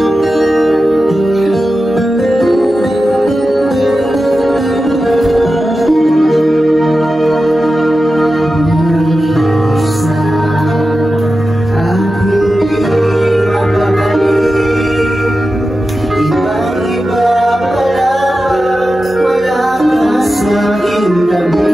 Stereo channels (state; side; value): normal; both; correlation 0.92